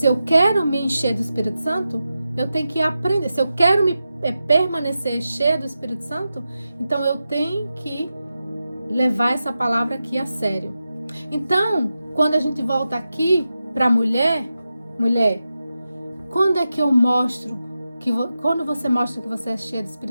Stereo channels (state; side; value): inverted; both; correlation -0.91